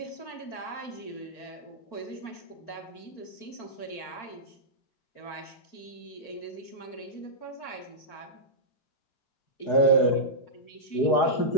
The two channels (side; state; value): right; late; 4.4 ms